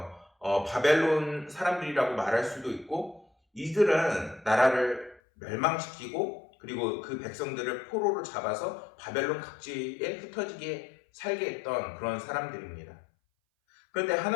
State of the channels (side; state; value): right; drops out; at 5.2 s